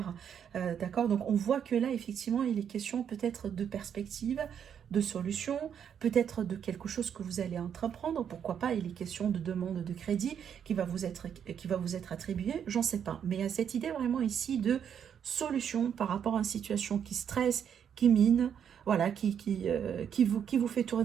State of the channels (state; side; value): quieter; left; 8.3 dB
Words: D'accord, donc on voit que là, effectivement, il est question peut-être de perspective, de solution, peut-être de quelque chose que vous allez entreprendre, pourquoi pas, il est question de demande de crédit qui va vous être attribuée, j'en sais pas. Mais il y a cette idée vraiment ici de solution par rapport à une situation qui stresse, qui mine, voilà, qui vous fait